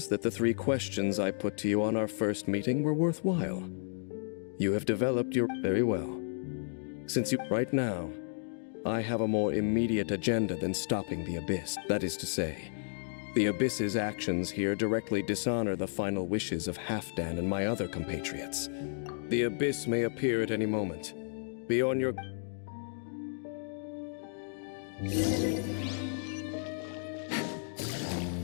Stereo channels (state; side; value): silent; right; digital silence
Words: that the 3 questions I put to you on our first meeting were worthwhile. You have developed your... Very well. Since you... Right now, I have a more immediate agenda than stopping the Abyss. That is to say, the Abyss's actions here directly dishonor the final wishes of Halfdan and my other compatriots. The Abyss may appear at any moment. Be on your...